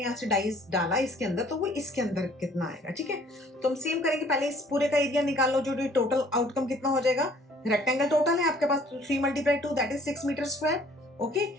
यहाँ से डाइस डाला इसके अंदर तो वो इसके अंदर कितना आएगा, ठीक है। तो हम सेम करेंगे, पहले इस पूरे का एरिया निकाल लो, जो टोटल आउटकम कितना हो जाएगा। रेक्टेंगल टोटल है आपके पास 3 × 2 that is 6 metre square, okay.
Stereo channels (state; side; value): normal; both; correlation 0.57